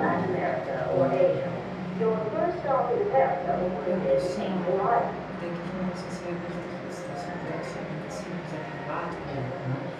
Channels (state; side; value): identical; both; correlation 1.00